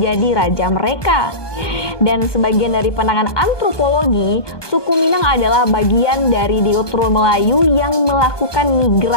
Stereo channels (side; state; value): right; late; 1.2 ms